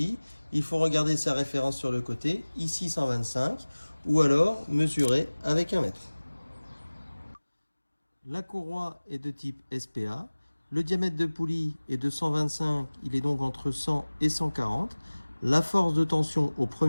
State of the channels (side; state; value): both; inverted; correlation -1.00